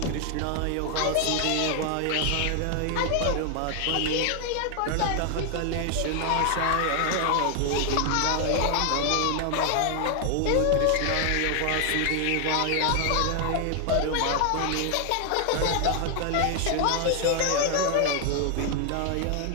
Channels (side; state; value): both; different; correlation 0.00